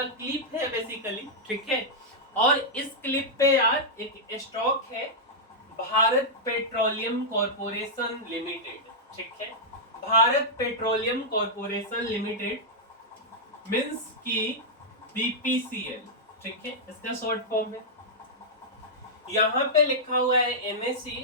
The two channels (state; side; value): normal; both; correlation -0.08